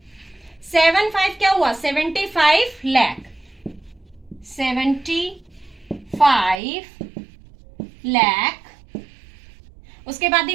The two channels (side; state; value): left; drops out; at 6.6 s